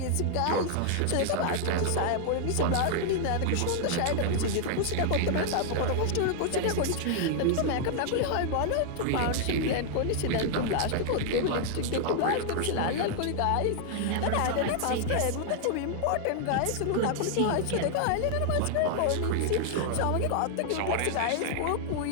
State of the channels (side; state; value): both; different; correlation 0.00